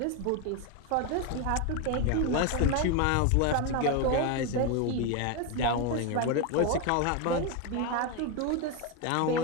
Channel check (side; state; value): both; different; correlation 0.02